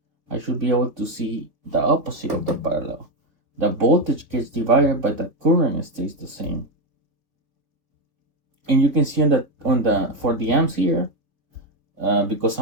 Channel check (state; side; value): late; left; 3.5 ms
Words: I should be able to see the opposite of the parallel. The voltage gets divided, but the current stays the same. And you can see for the amps here, because